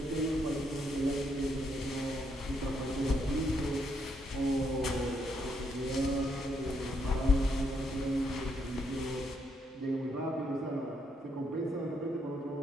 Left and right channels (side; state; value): both; normal; correlation 0.76